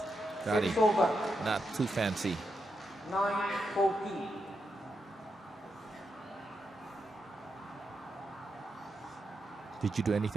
Gadi, not too fancy. 9-14. Did you do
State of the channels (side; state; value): both; normal; correlation 0.85